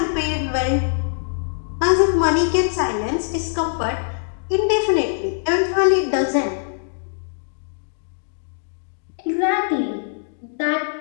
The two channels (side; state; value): right; silent; digital silence